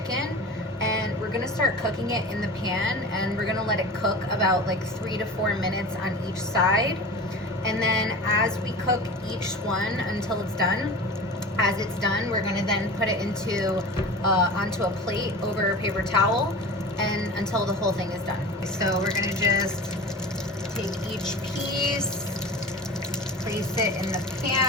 and we're gonna start cooking it in the pan, and we're gonna let it cook about like 3 to 4 minutes on each side. And then as we cook each one until it's done, as it's done, we're gonna then put it into onto a plate over a paper towel, and until the whole thing is done. So we're gonna just take each piece, place it in the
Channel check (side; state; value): both; normal; correlation 0.34